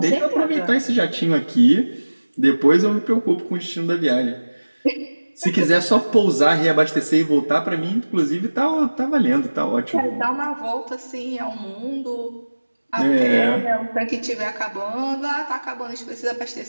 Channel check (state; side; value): inverted; both; correlation -1.00